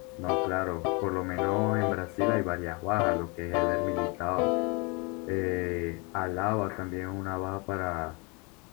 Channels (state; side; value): quieter; right; 30.4 dB